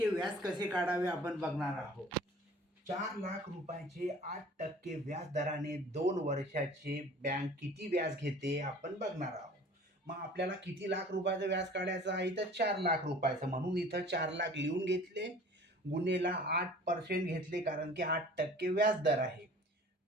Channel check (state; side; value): normal; both; correlation 0.47